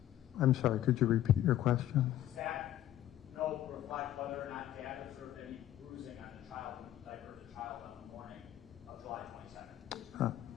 I'm sorry, could you repeat your question? Does that note reflect whether or not Dad observed any bruising on the child when he diapered the child on the morning of July 22nd?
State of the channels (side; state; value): right; quieter; 12.7 dB